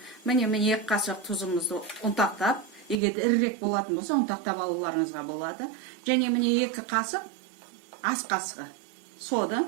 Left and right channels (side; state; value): left; drops out; at 3.0 s